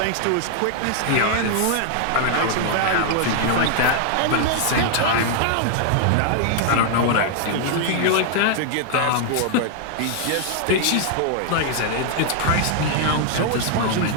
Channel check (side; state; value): both; different; correlation 0.00